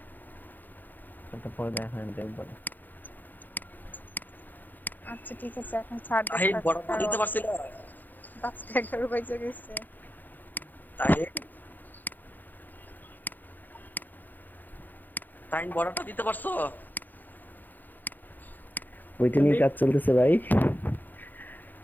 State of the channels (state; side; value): late; right; 0.086 ms